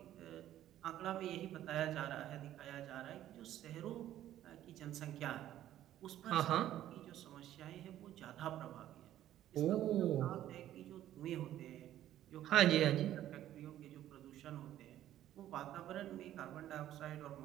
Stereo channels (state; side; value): quieter; left; 12.5 dB